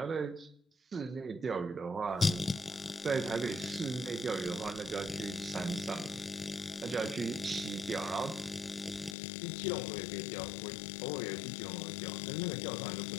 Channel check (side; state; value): right; drops out; at 9.2 s